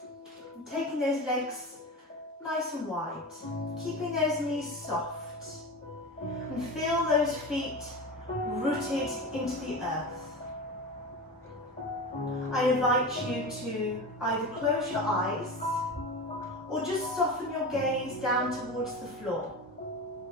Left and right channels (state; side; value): normal; both; correlation 0.27